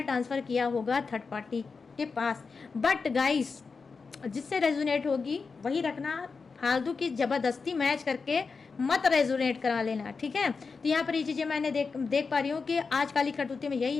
ट्रांसफ़र किया होगा थर्ड पार्टी के पास। बट गाइस जिससे रेजोनेट होगी वही रखना, फालतू की ज़बरदस्ती मैच करके मत रेजोनेट करा लेना, ठीक है। तो यहाँ पर ये चीज़ें मैंने देख पा रही हूँ कि आज काली करतूती में यही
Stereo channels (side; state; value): right; quieter; 4.8 dB